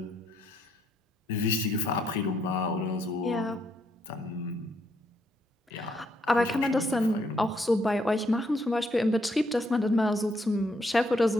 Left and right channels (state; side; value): normal; both; correlation 0.73